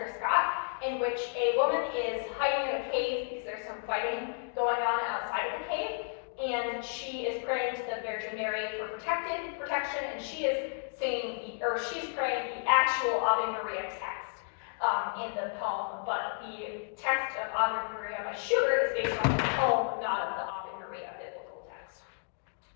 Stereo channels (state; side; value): silent; right; 56 dB below the other